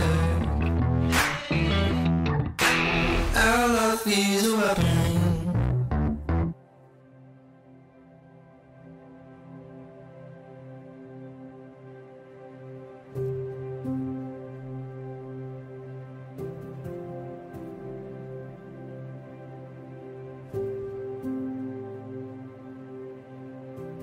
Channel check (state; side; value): identical; both; correlation 1.00